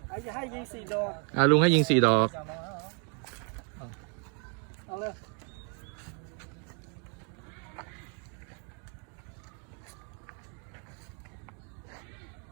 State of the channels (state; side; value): quieter; left; 38.1 dB